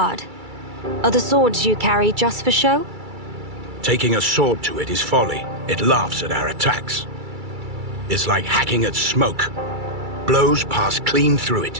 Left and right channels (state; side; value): late; left; 2.3 ms